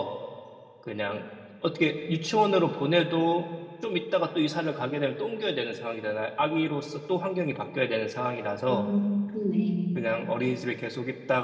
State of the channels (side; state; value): both; identical; correlation 1.00